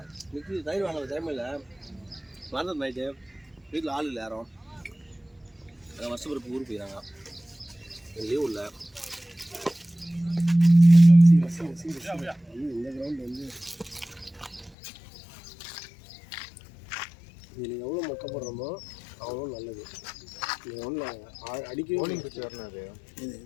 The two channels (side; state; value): right; drops out; at 14.8 s